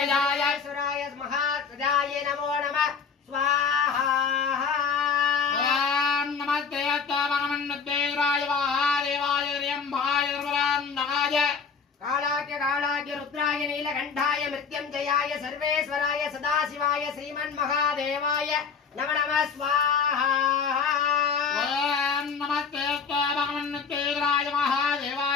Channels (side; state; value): right; quieter; 5.8 dB